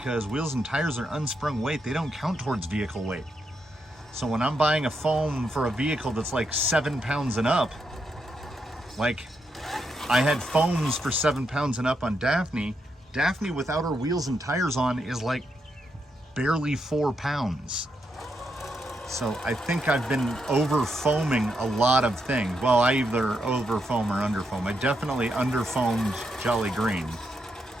wheels and tires are unsprung weight. They don't count towards vehicle weight. So when I'm buying a foam for a vehicle that's like 7 pounds and up, like I had foams for 7 pounds and up on Daphne. Daphne without her wheels and tires on is like barely 4 pounds. So I think I've been over foaming a lot of things. Well, I either over foam or under foam. I definitely under foamed Jolly Green.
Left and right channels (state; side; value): normal; both; correlation 0.81